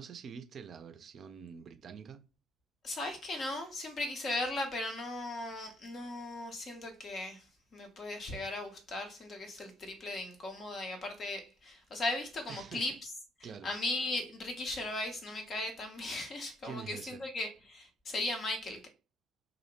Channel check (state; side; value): normal; both; correlation 0.71